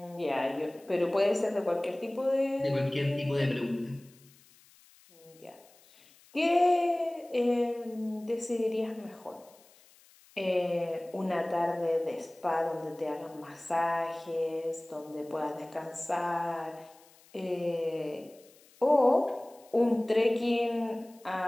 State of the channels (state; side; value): noise; left; hiss, 27 dB below the sound